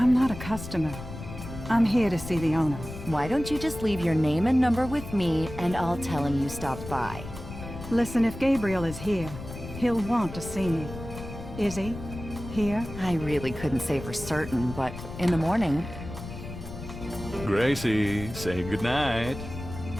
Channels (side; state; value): left; noise; rumble, 11 dB below the sound